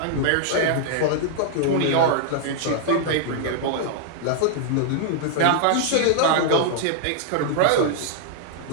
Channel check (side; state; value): both; different; correlation -0.01